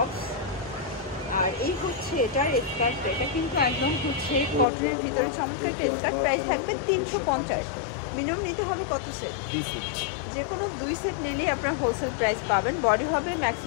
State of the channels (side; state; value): right; drops out; at 4.7 s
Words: আর এই হচ্ছে এটার স্কার্টটা। এটা কিন্তু একদম হচ্ছে কটনের ভিতরে চমৎকার একটা স্কার্ট। প্রাইস থাকবে 350। মিনিমাম নিতে হবে কত সেট? যে কোনো 2 সেট নিলেই আপনার হোলসেল প্রাইস পাবেন। বডি হবে